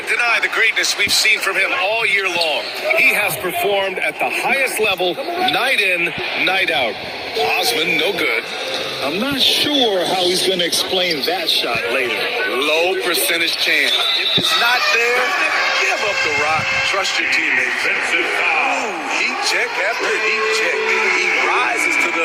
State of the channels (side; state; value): both; identical; correlation 1.00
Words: deny the greatness we've seen from him all year long. He has performed at the highest level, night in, night out. Osman, no good. I'm not sure how he's going to explain that shot later. Low percentage chance. If it's not there, give up the rock. Trust your teammates. Ooh, heat check after heat check. He rises to the